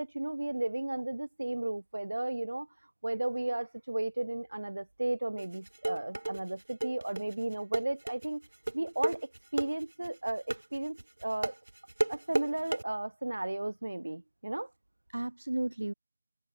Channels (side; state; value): both; inverted; correlation -1.00